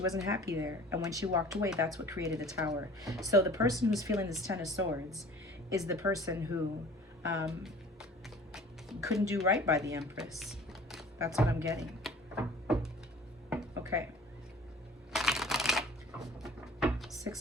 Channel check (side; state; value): both; normal; correlation 0.47